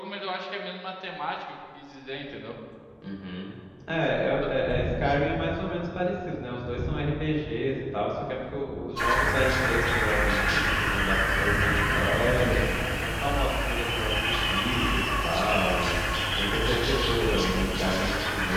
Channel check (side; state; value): both; identical; correlation 1.00